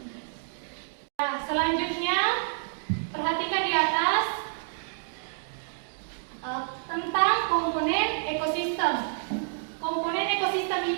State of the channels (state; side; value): silent; left; digital silence